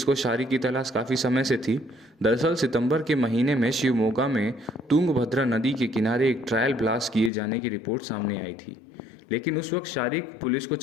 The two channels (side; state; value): right; drops out; at 7.3 s